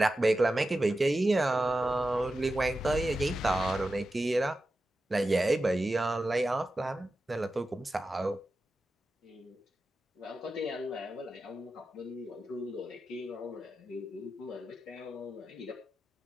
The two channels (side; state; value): both; normal; correlation 0.92